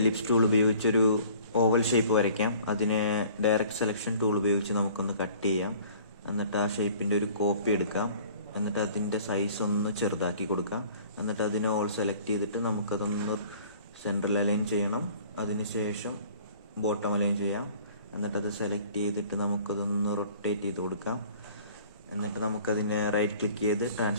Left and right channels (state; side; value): inverted; both; correlation -0.50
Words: tool ഉപയോഗിച്ചൊരു oval shape വരയ്ക്കാം. അതിന് ഡയറക്റ്റ് സെലക്ഷൻ ടൂൾ ഉപയോഗിച്ച് നമുക്കൊന്ന് കട്ട് ചെയ്യാം. എന്നിട്ട് ആ ഷേപ്പിൻ്റെ ഒരു കോപ്പി എടുക്കാം. എന്നിട്ട് അതിൻ്റെ സൈസ് ഒന്ന് ചെറുതാക്കി കൊടുക്കാം. എന്നിട്ട് അതിനെ ഓൾ സെലക്ട് ചെയ്തിട്ട് നമുക്കതൊന്ന് സെൻട്രൽ അലൈൻ ചെയ്യണം. അതിനുശേഷം ബോട്ടം അലൈൻ ചെയ്യാം. എന്നിട്ടത് സെലക്ട് ചെയ്തിട്ട് നമുക്കതൊന്ന് റൊട്ടേറ്റ് ചെയ്ത് കൊടുക്കാം. എന്നിട്ട് നമുക്കതിനെ റൈറ്റ് ക്ലിക്ക് ചെയ്ത്